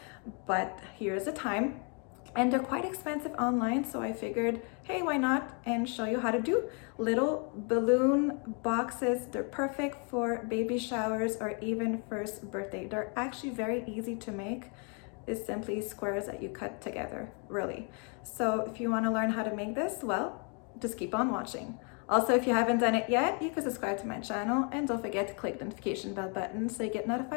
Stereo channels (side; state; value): right; quieter; 37.1 dB